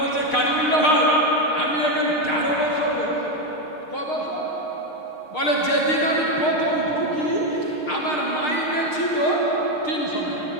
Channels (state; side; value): late; right; 6.5 ms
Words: কারিমুল্লাহ ভাই, আমি এখন 13 বছর, ক বছর? বলে যেদিন আমি প্রথম ঢুকি আমার মাইনে ছিল 300